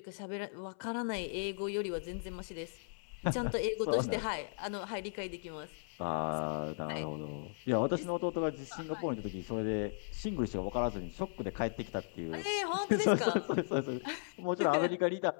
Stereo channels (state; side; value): silent; right; 53 dB below the other